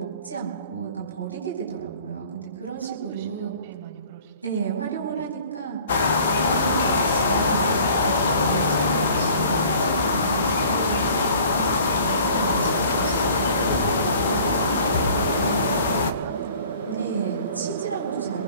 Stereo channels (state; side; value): inverted; both; correlation -0.49